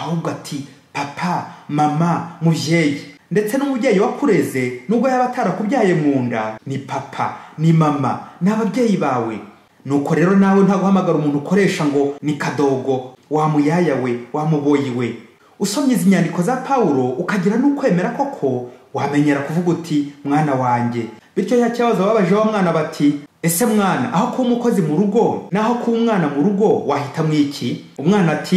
ati papa, mama, muvyeyi. Ndetse n'umubyeyi wakureze nubwo yaba atarakubyaye mu nda, ni papa, ni mama, n'ababyeyi bawe. Nuko rero nawe nta guhamagara umuntu ukoresha ngo ni kadogo, wa muyaya we, wa muboyi we. Usomye izi nyandiko za Paulo ukagira n'ukwemera koko, wamenyera kuvuga uti mwana wanjye. Bityo ya kibazo babaje wa mwana bati, ese mwana, aho kuba umukozi mu rugo naho kuba umwana mu rugo wahita mwiki? Umwana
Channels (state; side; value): identical; both; correlation 1.00